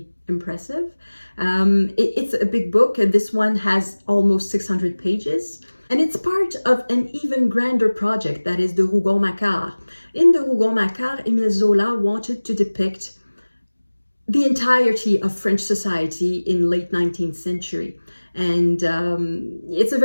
impressive. It's a big book, and this one has almost 600 pages. And it's part of an even grander project, that is the Rougon-Macquart. In the Rougon-Macquart, Émile Zola wanted to depict the entirety of French society in late 19th century. And it's a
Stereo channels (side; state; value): both; inverted; correlation -1.00